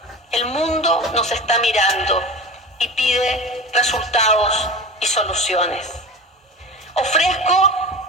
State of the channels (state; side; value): normal; both; correlation 0.31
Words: El mundo nos está mirando y pide resultados y soluciones. Ofrezco